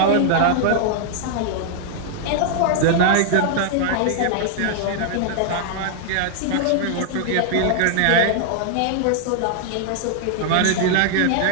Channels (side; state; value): both; different; correlation 0.00